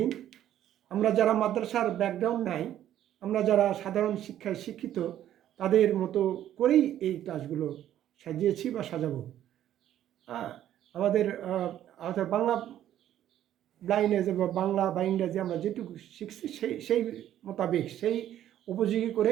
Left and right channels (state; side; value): quieter; left; 11.7 dB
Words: আমরা যারা মাদ্রাসার ব্যাকগ্রাউন্ড নাই, আমরা যারা সাধারণ শিক্ষায় শিক্ষিত, তাদের মতো করেই এই ক্লাসগুলো সাজিয়েছি বা সাজাবো। আমাদের অর্থাৎ বাংলা লাইনে যে বাংলা বা ইংরেজি আমরা যেটুকু শিখছি সেই মোতাবেক, সেই উপযোগী করে